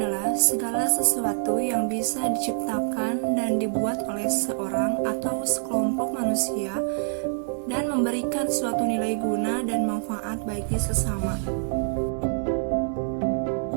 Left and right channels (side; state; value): left; silent; digital silence